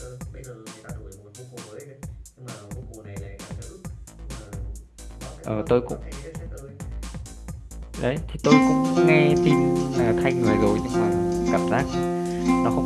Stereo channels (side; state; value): both; identical; correlation 1.00